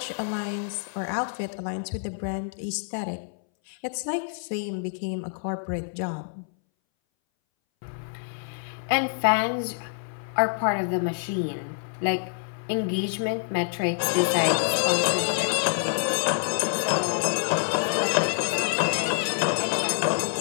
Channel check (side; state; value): right; silent; 60 dB below the other